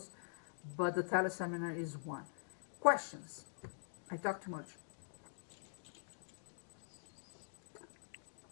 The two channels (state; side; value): silent; right; digital silence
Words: but the teleseminar is one. Questions? I talk too much.